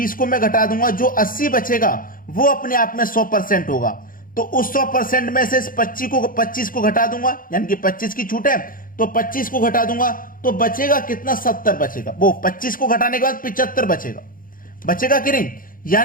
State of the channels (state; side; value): late; right; 0.40 ms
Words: को मैं घटा दूंगा, जो 80 बचेगा वो अपने आप में 100% होगा। तो उस 100% में से इस 25 को घटा दूंगा, यानी कि 25 की छूट है तो 25 को घटा दूंगा, तो बचेगा कितना 70 बचेगा। वो 25 को घटाने के बाद 75 बचेगा, बचेगा कि नहीं?